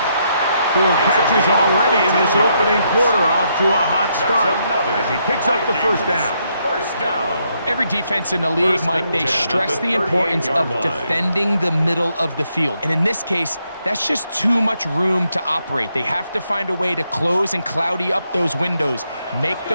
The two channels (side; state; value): both; inverted; correlation -0.77